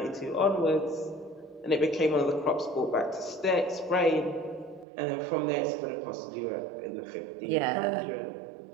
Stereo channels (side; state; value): left; drops out; at 4.9 s